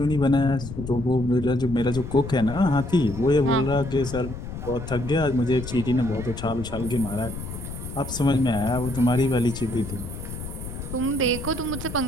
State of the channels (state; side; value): noise; left; rumble, 9 dB below the sound